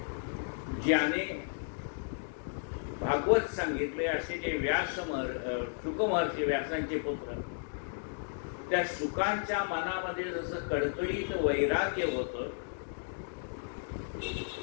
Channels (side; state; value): right; silent; digital silence